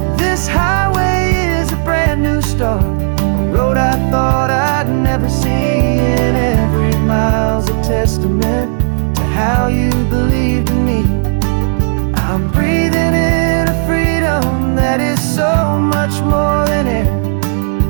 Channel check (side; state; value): left; silent; digital silence